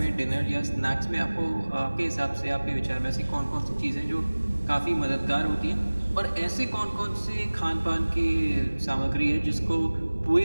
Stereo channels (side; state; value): both; inverted; correlation -1.00